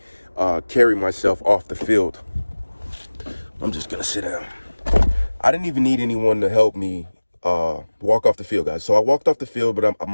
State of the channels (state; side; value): inverted; both; correlation -1.00